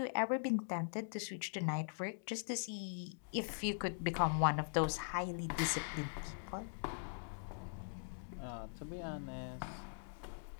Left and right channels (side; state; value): right; silent; digital silence